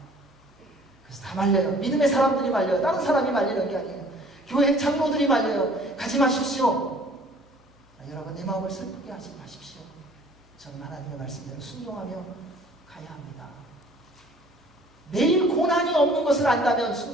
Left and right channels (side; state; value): both; normal; correlation 0.53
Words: 그래서 다 말려요. 믿음의 사람들이 말려요. 다른 사람이 말리는 게 아니에요. 교회 장로들이 말려요. 가지 마십시오. 여러분, 내 마음을 슬프게 하지 마십시오. 저는 하나님의 말씀대로 순종하며 가야 합니다. 내일 고난이 없는 것을 안다면